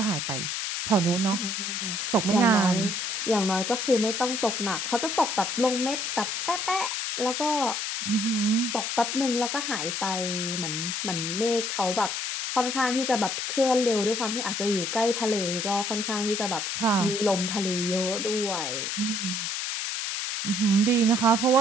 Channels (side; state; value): left; noise; hiss, 2 dB below the sound